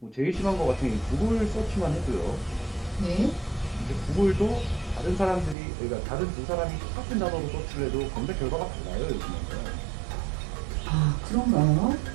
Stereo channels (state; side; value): drops out; left; at 5.6 s